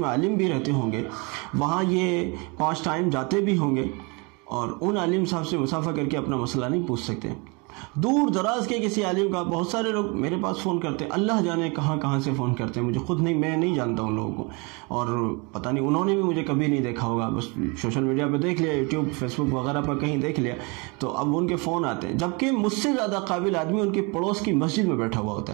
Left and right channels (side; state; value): left; quieter; 30.0 dB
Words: میں عالم بھی رہتے ہوں گے، وہاں یہ 5 ٹائم جاتے بھی ہوں گے، اور ان عالم صاحب سے مصافحہ کر کے اپنا مسئلہ نہیں پوچھ سکتے۔ دور دراز کے کسی عالم کا، بہت سارے لوگ میرے پاس فون کرتے ہیں، اللہ جانے کہاں سے فون کرتے ہیں، مجھے خود نہیں، میں نہیں جانتا ان لوگوں کو، اور پتہ نہیں انہوں نے بھی مجھے کبھی نہیں دیکھا ہوگا، بس سوشل میڈیا پہ دیکھ لیا، یوٹیوب فیس بک وغیرہ پر کہیں دیکھ لیا، تو اب ان کے فون آتے ہیں، جبکہ مجھ سے زیادہ قابل آدمی ان کے پڑوس کی مسجد میں بیٹھا ہوا